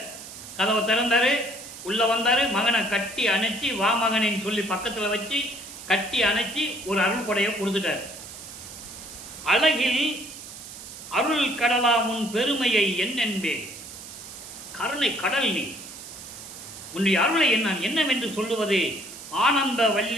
கதவை திறந்தாரு, உள்ள வந்தாரு, மகனை கட்டி அணைச்சி வா மகனின்னு சொல்லி பக்கத்தில் வச்சு கட்டி அணைச்சி ஒரு அருள் கொடையை கொடுத்துட்டாரு. அழகில் அருள் கடலா முன் பெருமையை என்னென்பேன், கருணை கடல் நீ, உன்னுடைய அருளை என்னவென்று சொல்லுவது? ஆனந்த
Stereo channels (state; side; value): noise; right; hiss, 13 dB below the sound